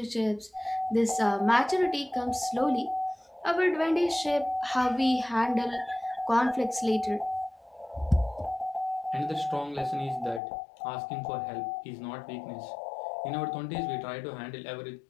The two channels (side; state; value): right; drops out; at 10.4 s